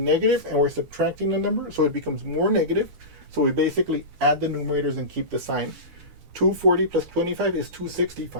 and we're subtracting a number, so it becomes more negative. So we basically add the numerators and keep the sign. 240 plus 25 is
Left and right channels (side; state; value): left; late; 13 ms